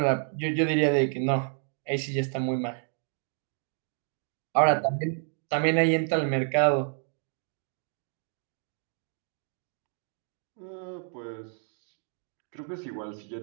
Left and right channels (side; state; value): left; silent; 58 dB below the other